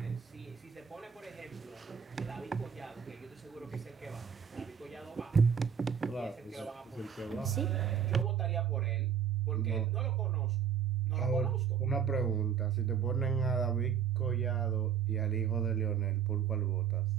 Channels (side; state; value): left; quieter; 7.8 dB